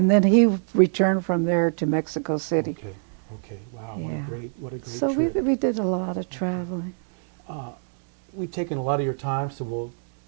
then he returned from there to Mexico City. Okay. Okay. Wow. Yeah. What a great So trip. we did a lot of traveling. We've taken a lot of your time, so we'll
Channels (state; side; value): silent; left; digital silence